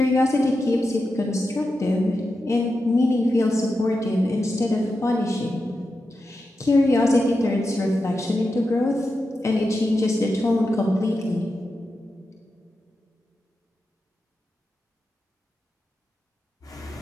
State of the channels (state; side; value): normal; both; correlation 0.89